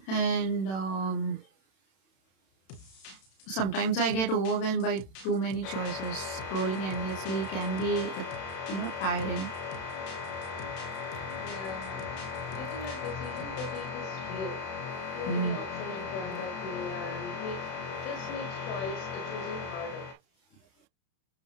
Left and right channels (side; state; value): right; late; 31 ms